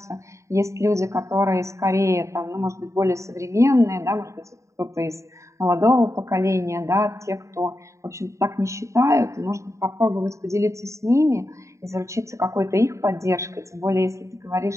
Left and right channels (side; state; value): left; late; 0.14 ms